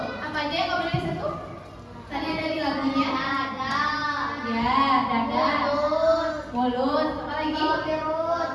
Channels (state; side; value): identical; both; correlation 1.00